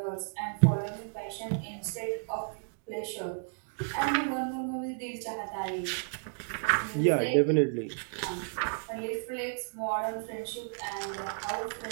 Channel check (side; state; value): left; silent; digital silence